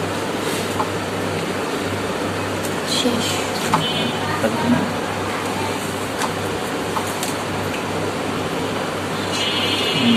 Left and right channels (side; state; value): both; identical; correlation 1.00